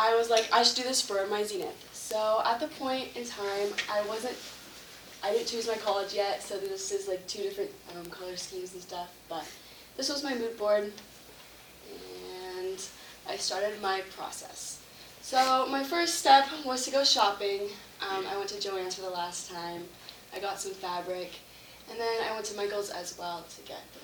was like, I should do this for my Zenith. So at the point in time I didn't choose my college yet, so this is like two different color schemes and stuff, but this was my mood board and I started my process. So my first step was to go shopping. I went to Joann's for the last time. I got some fabric, and then I went to Michael's as well to get the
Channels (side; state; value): both; identical; correlation 1.00